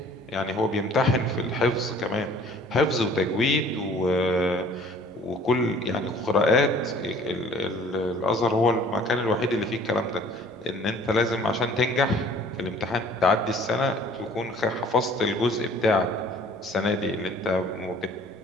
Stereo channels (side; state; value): both; normal; correlation 0.53